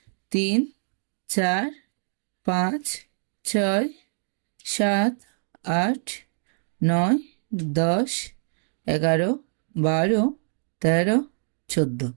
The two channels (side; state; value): left; silent; digital silence